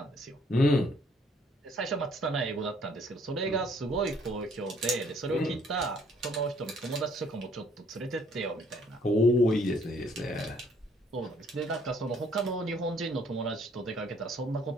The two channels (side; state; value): both; normal; correlation 0.63